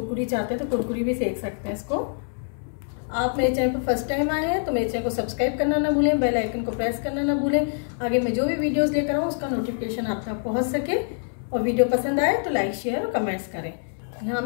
चाहते हैं तो कुरकुरी भी सेक सकते हैं इसको। आप मेरे चैनल पर फर्स्ट टाइम आए हैं तो मेरे चैनल को सब्सक्राइब करना ना भूलें, बेल आइकन को प्रेस करना ना भूलें। आगे मैं जो भी वीडियोस लेकर आऊँ उसका नोटिफिकेशन आप तक पहुँच सके। और वीडियो पसंद आए तो लाइक, शेयर और कमेंट्स करें। यहाँ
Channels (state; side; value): silent; right; 62 dB below the other